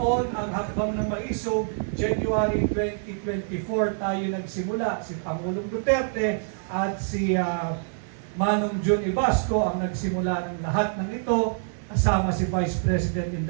ang Hakbang ng Maisog. January 2024 tayo nagsimula. Si Pangulong Duterte at si Manong John Ibasco ang nagsimula ng lahat ng ito, kasama si Vice President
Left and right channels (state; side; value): silent; left; digital silence